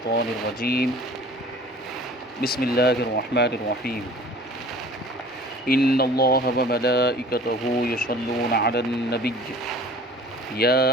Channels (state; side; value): normal; both; correlation 0.46